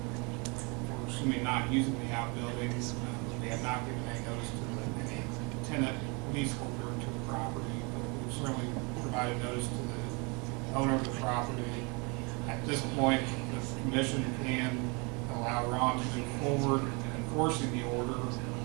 We're assuming not using the outbuildings. We have not given any notice to any tenant leaseholder to the property, but we've certainly provided notice to the owner of the property. At this point, the commission can allow Ron to move forward in enforcing the order.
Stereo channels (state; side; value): quieter; left; 30.4 dB